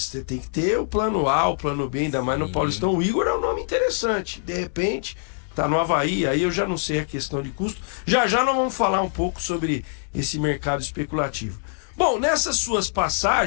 você tem que ter o plano A, o plano B, ainda mais no Paulistão. O Igor é um nome interessante, de repente... Tá no Havaí, aí eu já não sei a questão de custo. Já nós vamos falar um pouco sobre esse mercado especulativo. Bom, nessas suas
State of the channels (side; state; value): right; silent; digital silence